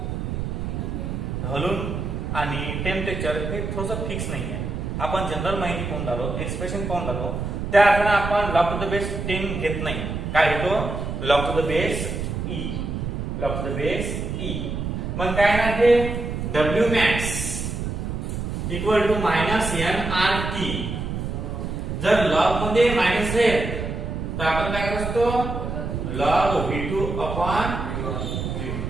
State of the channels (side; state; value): right; noise; rumble, 4 dB below the sound